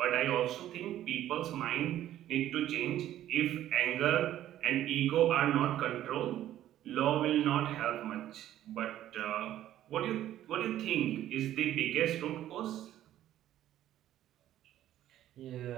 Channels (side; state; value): left; quieter; 12.6 dB